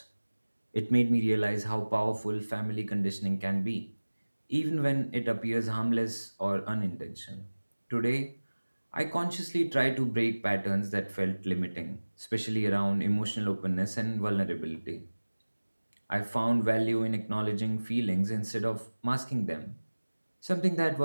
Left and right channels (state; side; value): inverted; both; correlation -1.00